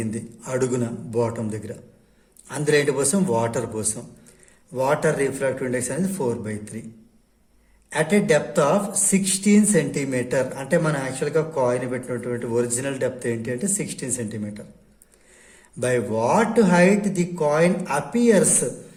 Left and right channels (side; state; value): both; identical; correlation 1.00